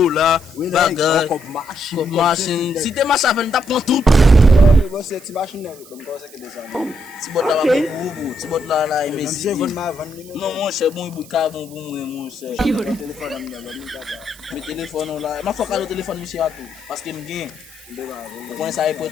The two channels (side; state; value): right; noise; hiss, 21 dB below the sound